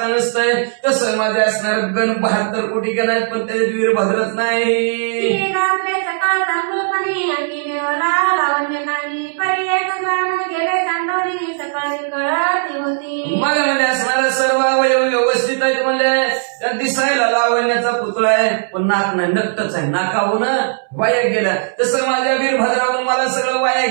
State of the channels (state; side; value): silent; left; 67 dB below the other